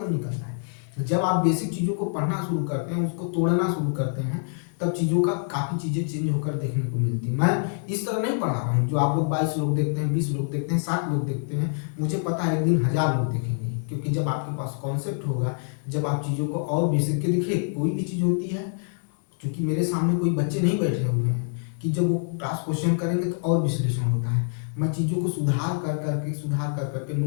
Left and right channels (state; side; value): silent; right; 61 dB below the other